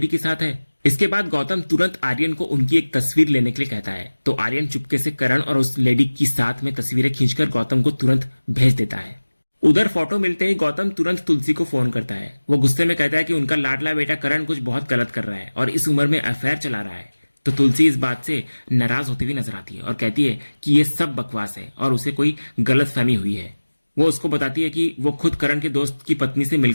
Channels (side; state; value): both; inverted; correlation -1.00